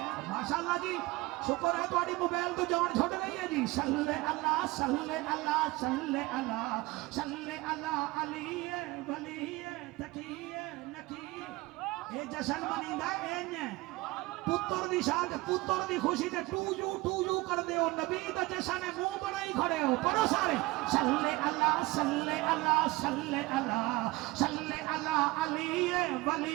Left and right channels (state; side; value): quieter; left; 21.2 dB